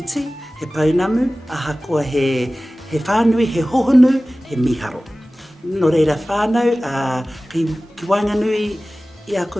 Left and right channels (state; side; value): normal; both; correlation 0.97